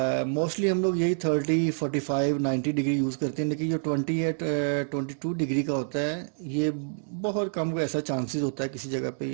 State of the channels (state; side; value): silent; left; digital silence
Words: मोस्टली हम लोग यही 30, 45, 90 डिग्री यूज़ करते हैं, लेकिन जो 22 डिग्री का होता है ये बहुत कम को ऐसा चांसेस होता है किसी जगह पे